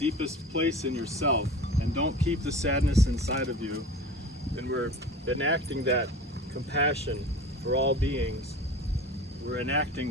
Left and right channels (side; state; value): both; normal; correlation 0.37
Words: place in yourself and don't keep the sadness inside of you. And we're enacting that compassion for all beings. We're